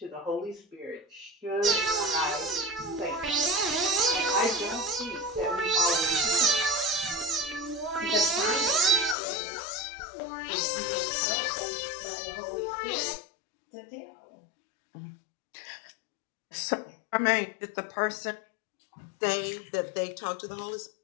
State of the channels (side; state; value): right; drops out; at 9.2 s